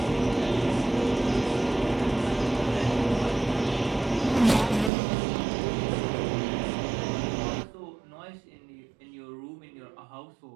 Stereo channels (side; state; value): left; drops out; at 4.9 s